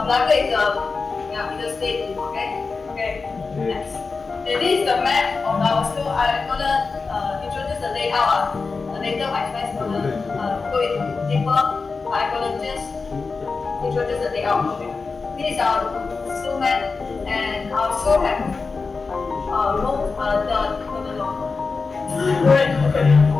is in the state. Okay. Next. This is the map of our school. I'm gonna introduce the layout. Later, my friends gonna go in deeper. I'm gonna just introduce the layout. Okay. This is our school map, and our school have room.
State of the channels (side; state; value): right; quieter; 4.4 dB